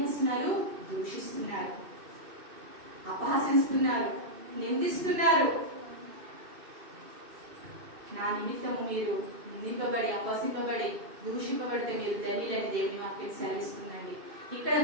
దూషిస్తున్నారు, అపహాసిస్తున్నారు, నిందిస్తున్నారు. నా నిమిత్తము మీరు నిందింపబడి, అపహసింపబడి, దూషింపబడితే మీరు ధన్యులని దేవుని వాక్యం సెలవిస్తుందండి. ఇక్కడ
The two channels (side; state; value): left; late; 2.6 ms